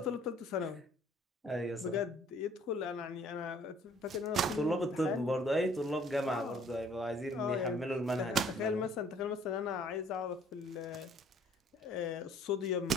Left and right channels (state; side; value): normal; both; correlation 0.58